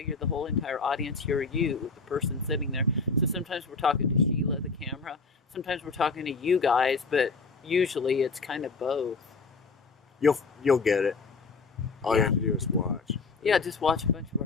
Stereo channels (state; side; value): quieter; right; 4.3 dB